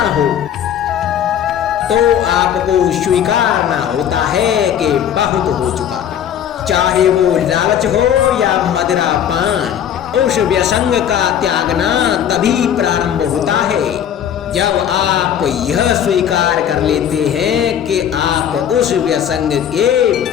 हो तो आपको स्वीकारना होता है कि बहुत हो चुका, चाहे वो लालच हो या मदिरा पान। उस व्यसंग का त्यागना तभी प्रारंभ होता है जब आप यह स्वीकार कर लेते हैं कि आप उस व्यसंग के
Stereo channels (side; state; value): right; quieter; 9.5 dB